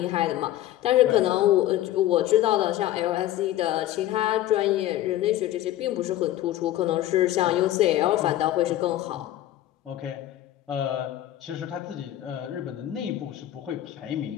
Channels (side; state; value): right; quieter; 13.6 dB